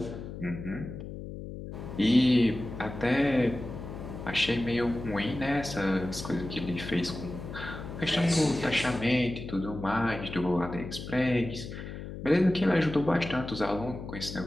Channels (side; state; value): left; noise; hum, 9 dB below the sound